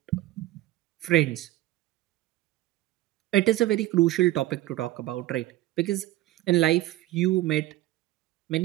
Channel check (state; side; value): quieter; left; 16.3 dB